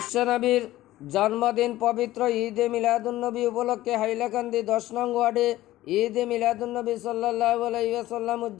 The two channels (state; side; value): quieter; right; 15.7 dB